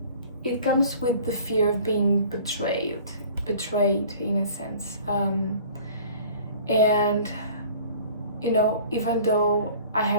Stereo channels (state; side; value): inverted; both; correlation -0.47